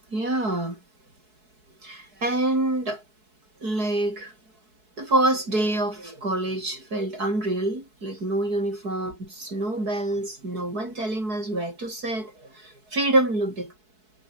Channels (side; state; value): left; late; 4.6 ms